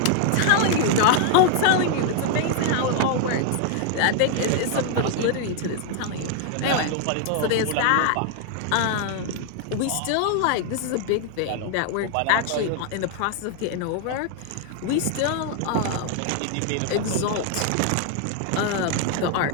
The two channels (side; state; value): both; different; correlation 0.00